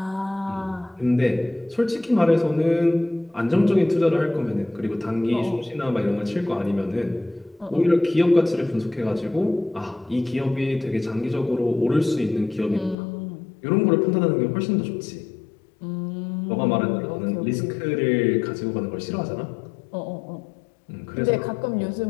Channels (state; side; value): drops out; right; at 13.0 s